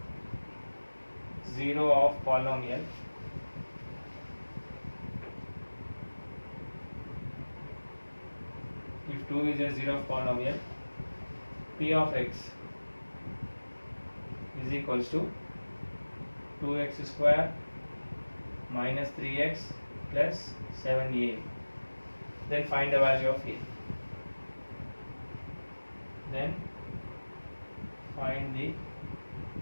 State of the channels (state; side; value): inverted; both; correlation -1.00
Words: 0 of polynomial, if 2 is a 0 of polynomial, p of x is equals to 2x square minus 3x plus 7a. Then find the value of a. Then find the